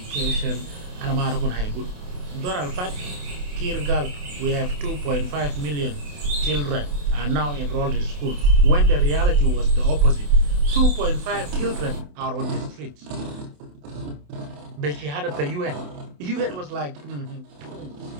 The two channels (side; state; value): left; late; 28 ms